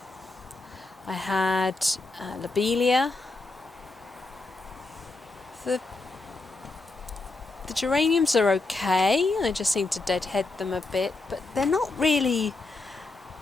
I had Lobelia, the geraniums are okay, I just seem to deadhead them a bit, but they're not really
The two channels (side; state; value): right; quieter; 3.3 dB